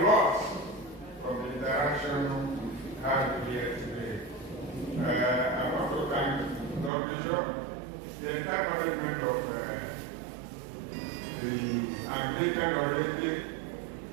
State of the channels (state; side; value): drops out; left; at 6.9 s